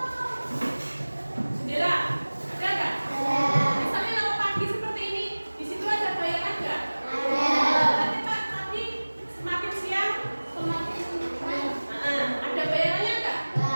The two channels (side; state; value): both; inverted; correlation -1.00